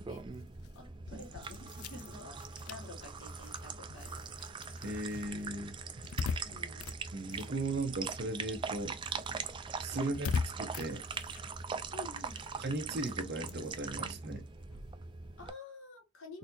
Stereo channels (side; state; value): both; normal; correlation 0.43